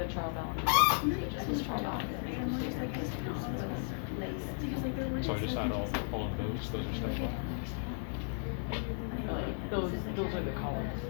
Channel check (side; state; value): right; silent; 54 dB below the other